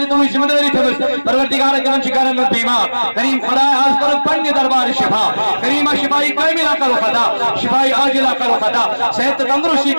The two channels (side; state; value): both; inverted; correlation -1.00